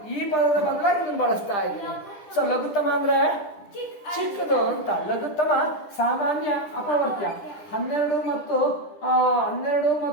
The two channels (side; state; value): right; late; 10 ms